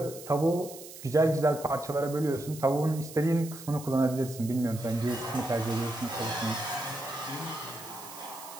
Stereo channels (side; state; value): right; noise; hiss, 15 dB below the sound